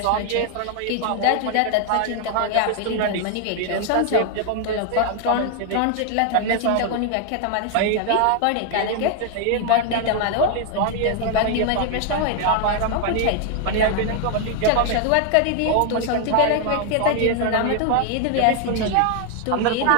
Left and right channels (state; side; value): different; both; correlation 0.00